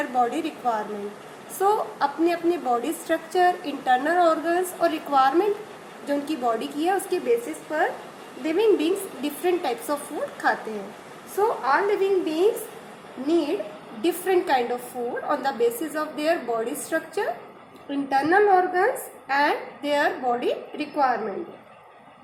body requirement. So अपने अपने body structure, internal organs और requirement जो उनकी body की है उसके basis पर living beings different types of food खाते हैं. So all living beings need different kind of food on the basis of their body structure, internal organs and their body requirement.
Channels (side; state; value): both; identical; correlation 1.00